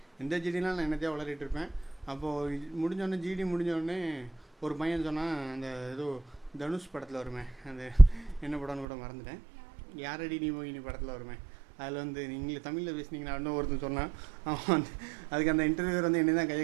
எந்த ஜிடிலாம் நான் என்னத்தையாக வளரிட்டு இருப்பேன். அப்போது முடிஞ்சோடனே ஜிடி முடிஞ்சோடனே ஒரு பையன் சொன்னால், அந்த ஏதோ தனுஷ் படத்தில் வருமே, அந்த என்ன படம்னு கூட மறந்துட்டேன், யாரடி நீ மோகினி படத்தில் வருமே, அதில் நீங்கள் தமிழில் பேசுனீங்கன்னா இன்னும் ஒருத்தன் சொன்னான். அவன் அதுக்கு அந்த இன்டர்வியூவர் என்ன தான் கையை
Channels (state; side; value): drops out; left; at 8.8 s